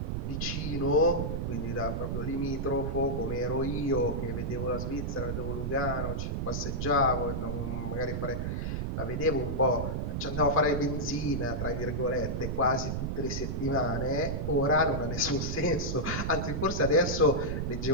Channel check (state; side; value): noise; right; rumble, 2 dB below the sound